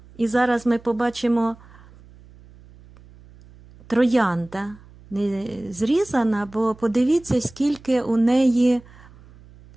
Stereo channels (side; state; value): right; noise; hum, 24 dB below the sound